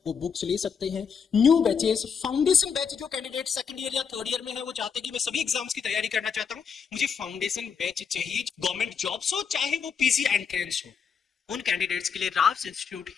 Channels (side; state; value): right; quieter; 6.5 dB